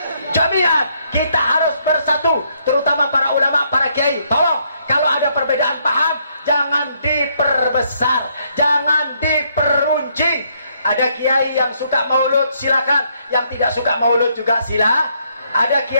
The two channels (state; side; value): inverted; both; correlation -0.72